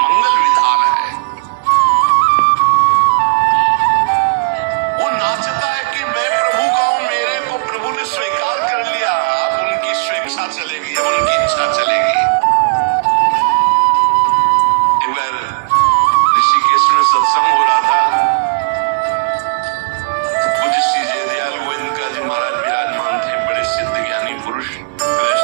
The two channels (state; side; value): quieter; left; 36.8 dB